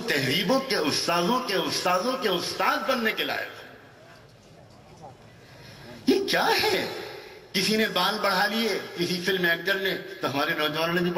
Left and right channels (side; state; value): both; identical; correlation 1.00